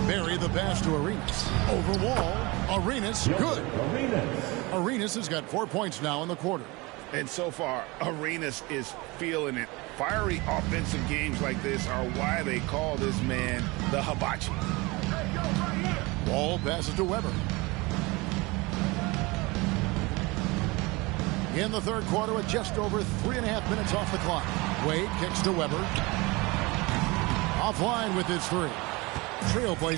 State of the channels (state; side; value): quieter; left; 24.2 dB